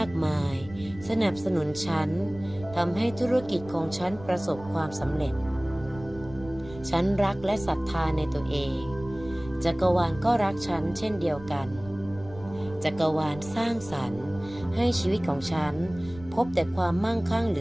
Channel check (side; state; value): right; noise; rumble, 17 dB below the sound